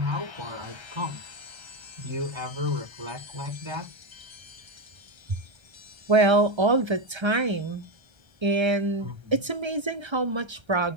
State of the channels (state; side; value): late; left; 1.3 ms